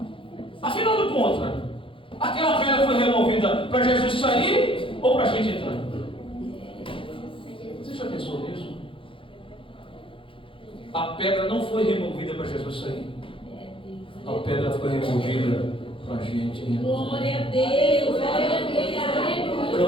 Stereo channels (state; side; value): late; right; 0.25 ms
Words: Afinal de contas, aquela pedra foi removida para Jesus sair ou para a gente entrar? Você já pensou nisso? A pedra não foi removida para Jesus sair. A pedra foi removida para a gente. Glória a Deus. O